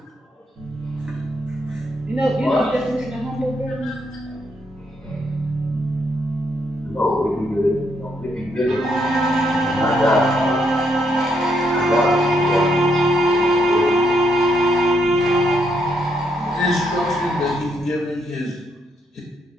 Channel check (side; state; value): both; normal; correlation 0.76